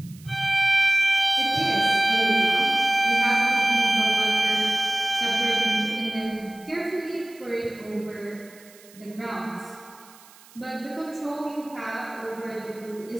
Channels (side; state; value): right; noise; hiss, 24 dB below the sound